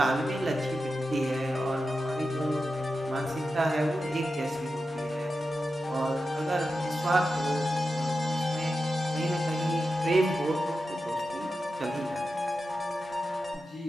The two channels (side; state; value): both; normal; correlation 0.91